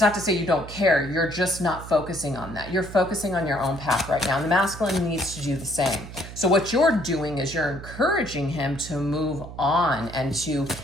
not to say you don't care. You're just not focusing on that. You're focusing on your own path right now. And the masculine needs to do the same. So what you're doing is you're encouraging him to move on and to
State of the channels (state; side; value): noise; right; hum, 13 dB below the sound